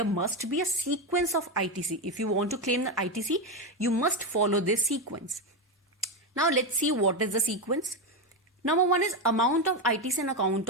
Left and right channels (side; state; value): both; normal; correlation 0.11